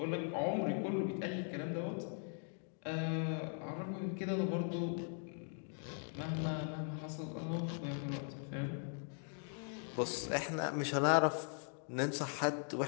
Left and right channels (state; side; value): silent; right; 51 dB below the other